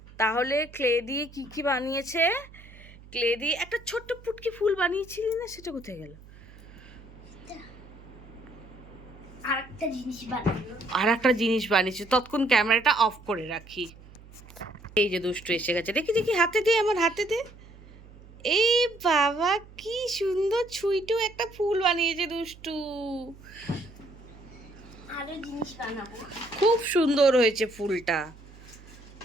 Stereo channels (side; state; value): right; noise; hum, 21 dB below the sound